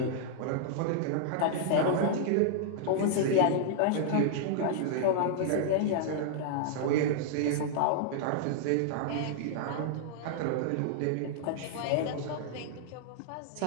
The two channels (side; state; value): both; different; correlation -0.01